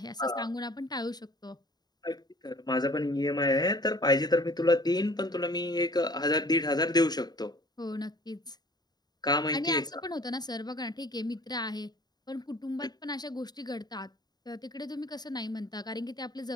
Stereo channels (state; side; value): late; right; 0.20 ms